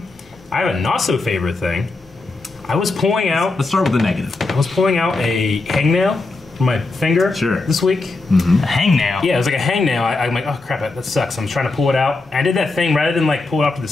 have a not so favorite thing. I was pulling out Let's start with the negative. a hangnail from my finger this week. A hangnail? Yeah, it was like a hangnail. I'm like, oh crap, that sucks. I'm trying to pull it out. I did that thing rather than like pull it off to the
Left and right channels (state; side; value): quieter; right; 3.4 dB